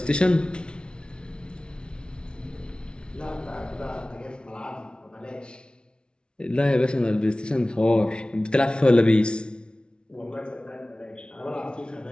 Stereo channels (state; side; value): late; right; 0.056 ms